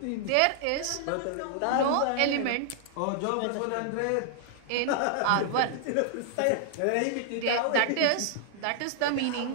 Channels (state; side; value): different; both; correlation -0.01